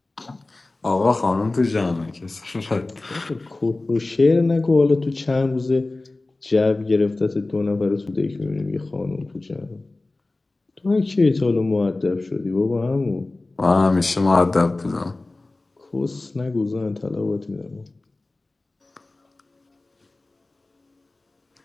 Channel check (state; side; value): quieter; right; 3.1 dB